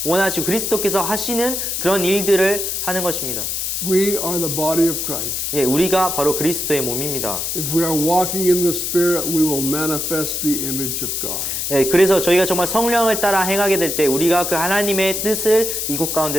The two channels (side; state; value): left; noise; hiss, 2 dB below the sound